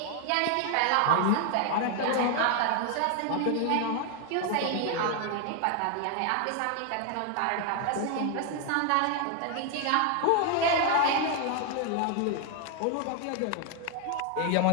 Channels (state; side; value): different; both; correlation 0.00